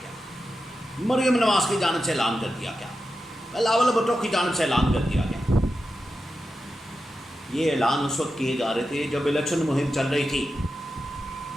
مریم نواز کی جانب سے اعلان کر دیا گیا، بلاول بھٹو کی جانب سے اعلان کر دیا گیا۔ یہ اعلان اس وقت کیے جا رہے تھے جب الیکشن مہم چل رہی تھی،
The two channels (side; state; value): both; normal; correlation 0.90